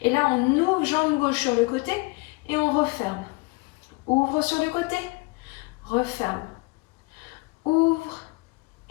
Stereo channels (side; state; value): right; quieter; 27.1 dB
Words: Et là, on ouvre jambe gauche sur le côté et on referme. Ouvre sur le côté. Referme. Ouvre